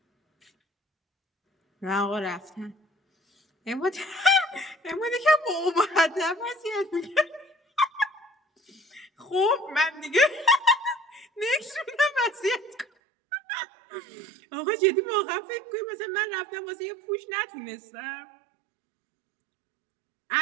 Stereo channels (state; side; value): drops out; left; at 12.9 s